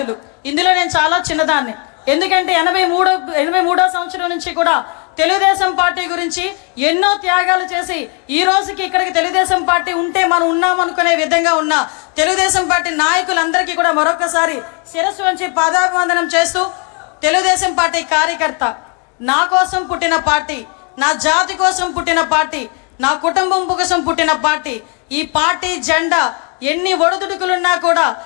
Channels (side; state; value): right; quieter; 36.3 dB